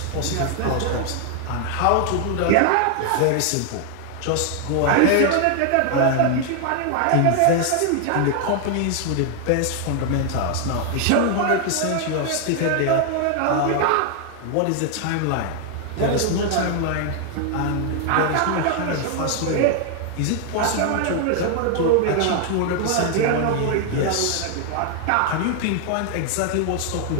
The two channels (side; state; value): both; different; correlation 0.00